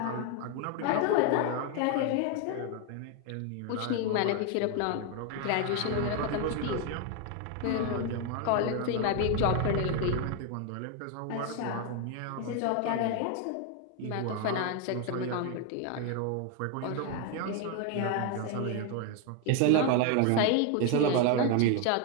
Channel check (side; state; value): both; different; correlation 0.01